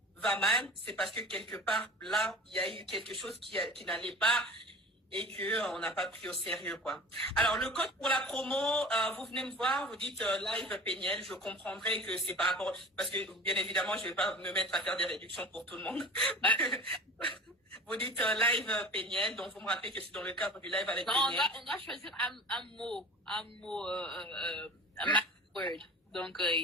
va mal, c'est parce que quelque part, là, il y a eu quelque chose qui n'allait pas et que on n'a pas pris au sérieux, quoi. Alors, le code pour la promo, vous venez me voir, vous dites live Péniel, je comprendrai que c'est par rapport, parce que bien évidemment, je vais pas me mettre à faire des réductions pour tout le monde. Vous dites live Péniel, donc vous me rappelez que c'est dans le cadre du live avec Péniel. On doit choisir un mot, un word. Donc,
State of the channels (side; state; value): both; normal; correlation 0.39